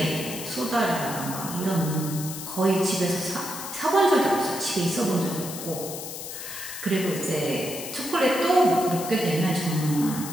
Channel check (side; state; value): left; noise; hiss, 9 dB below the sound